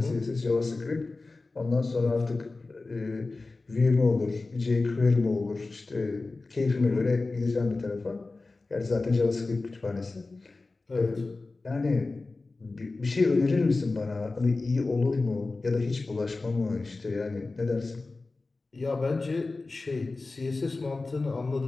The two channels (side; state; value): right; quieter; 3.5 dB